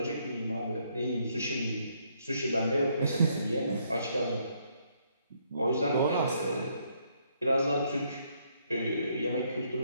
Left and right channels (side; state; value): both; inverted; correlation -0.71